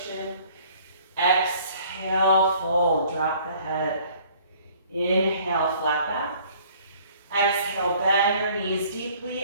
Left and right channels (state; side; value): inverted; both; correlation -0.55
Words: Exhale, fold, drop the head. Inhale, flat back. Exhale, bend your knees